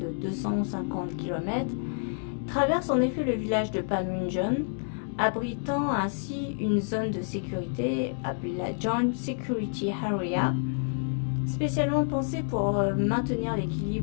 250 km, traverse en effet le village de Panmunjom, abritant ainsi une zone de sécurité appelée la Joint Security Area, spécialement pensée pour maintenir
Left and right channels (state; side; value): silent; right; digital silence